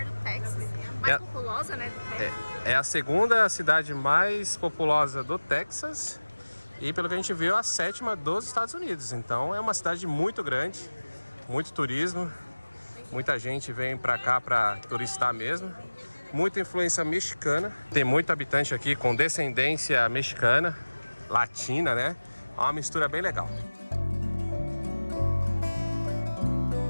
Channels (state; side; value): inverted; both; correlation -1.00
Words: do Texas, mais populosa, né? Do Texas. É a segunda cidade mais populosa do Texas e, pelo que a gente viu, a 7ª dos Estados Unidos. Então é uma cidade muito grande, muito turismo, muita gente vem pra cá pra turistar mesmo. Muita influência mexicana, tem muito habitante aqui com descendência mexicana, latina, né? É uma mistura bem legal.